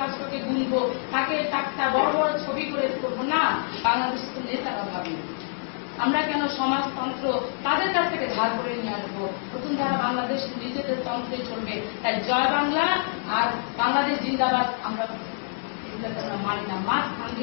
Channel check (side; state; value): right; silent; digital silence